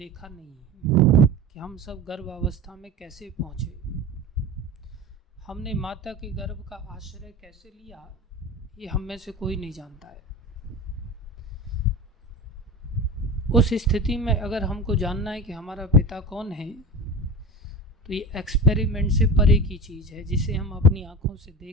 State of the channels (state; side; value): normal; both; correlation 0.31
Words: नहीं है कि हम सब गर्भावस्था में कैसे पहुँचे। हमने माता के गर्भ का आश्रय कैसे लिया, ये हम में से कोई नहीं जानता है। उस स्थिति में अगर हमको जानना है कि हमारा पिता कौन है, तो ये एक्सपेरिमेंट से परे की चीज़ है, जिसे हम अपनी आँखों से